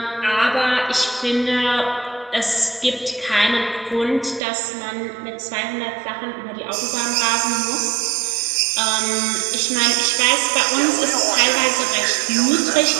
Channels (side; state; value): left; drops out; at 4.4 s